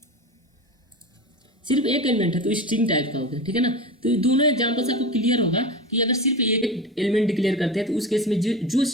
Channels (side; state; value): both; normal; correlation 0.27